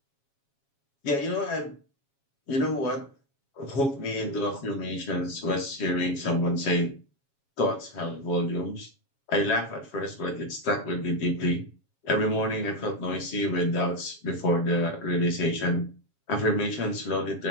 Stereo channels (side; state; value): right; late; 7.3 ms